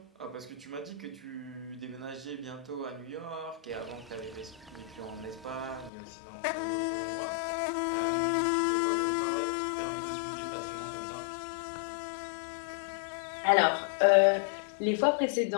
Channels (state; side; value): drops out; right; at 5.9 s